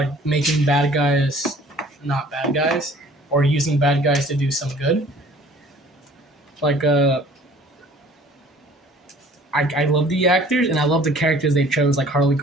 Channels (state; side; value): normal; both; correlation 0.52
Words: making bad guys not bad guys, or using bad guys to do some good. Like I love the actors and I love the characters they chose, like Harley